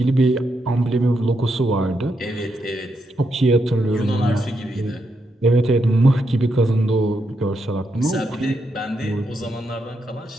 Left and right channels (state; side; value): normal; both; correlation 0.81